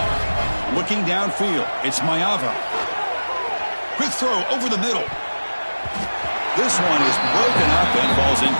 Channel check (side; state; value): both; inverted; correlation -1.00